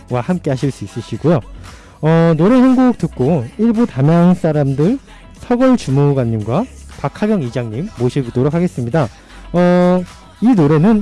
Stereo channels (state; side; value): identical; both; correlation 1.00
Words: 함께 하실 수 있으시고요. 노래 한 곡 듣고 1부 담양 사람들 서걸 주무관님과 박하경 이장님 모시도록 하겠습니다. 이